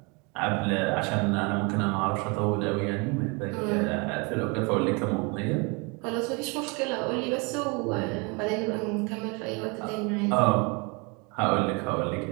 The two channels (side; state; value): left; quieter; 30.3 dB